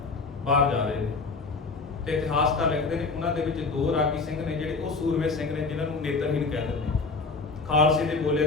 ਬਾਹਰ ਜਾ ਰਹੇ ਨੇ ਤੇ ਇਤਿਹਾਸਕਾਰ ਲਿਖਦੇ ਨੇ ਉਹਨਾਂ ਦੇ ਵਿੱਚ ਦੋ ਰਾਗੀ ਸਿੰਘ ਨੇ ਜਿਹੜੇ ਉਹ ਸੂਰਮੇ ਸਿੰਘ ਨੇ ਜਿਨ੍ਹਾਂ ਨੂੰ ਨੇਤਰਹੀਣ ਕਹਿ ਦਿੰਦੇ ਨੇ। ਖਾਲਸੇ ਦੇ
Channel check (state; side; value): quieter; right; 4.1 dB